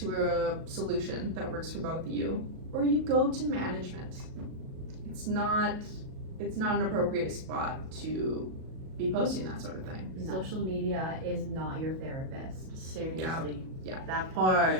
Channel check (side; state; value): left; late; 37 ms